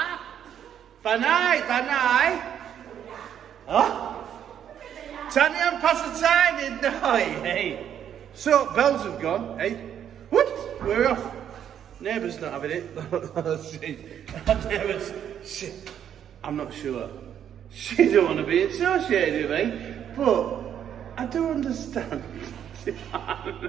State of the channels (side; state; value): left; quieter; 9.4 dB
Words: Banai. Huh? Tanya Pattaya, no, hey. So, bells have gone, hey. What? We're off. Neighbour's not having it. Neighbour's, shit. I'm not sure. She don't want to be associated with me, but I do understand.